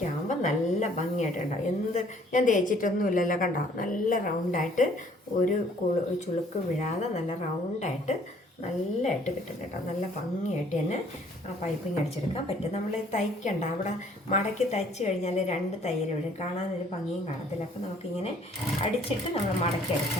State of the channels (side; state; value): both; normal; correlation 0.59